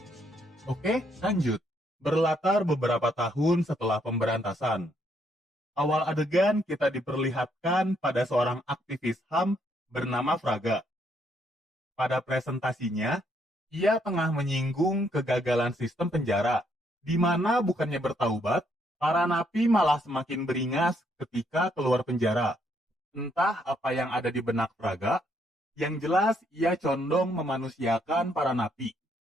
Oke, lanjut. Berlatar beberapa tahun setelah pemberantasan. Awal adegan kita diperlihatkan pada seorang aktivis HAM bernama Fraga. Pada presentasinya, ia tengah menyinggung kegagalan sistem penjara, di mana bukannya bertaubat, para napi malah semakin beringas ketika keluar penjara. Entah apa yang ada di benak Fraga, yang jelas ia condong memanusiakan para napi.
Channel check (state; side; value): normal; both; correlation 0.72